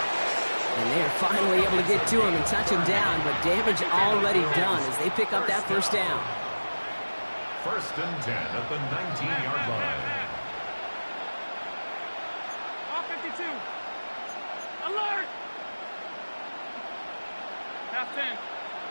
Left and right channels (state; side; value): inverted; both; correlation -1.00